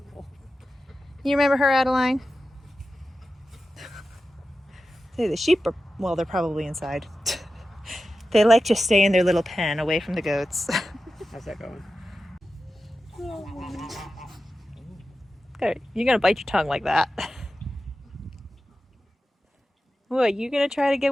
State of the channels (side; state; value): both; normal; correlation 0.93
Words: You remember her, Adeline? Say the sheep are, well, they're probably inside. They like to stay in their little pen away from the goats. How's that going? You're gonna bite your tongue like that. What, you gonna try to